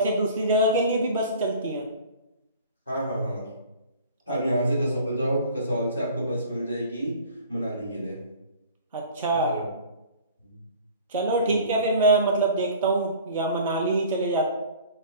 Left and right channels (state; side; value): inverted; both; correlation -0.47